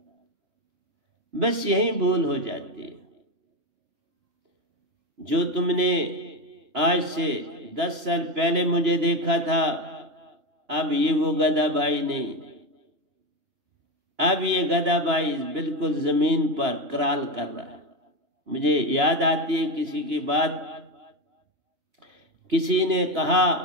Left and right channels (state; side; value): late; left; 3.4 ms